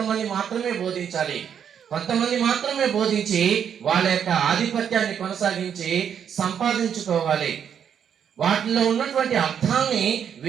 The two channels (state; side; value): quieter; left; 8.2 dB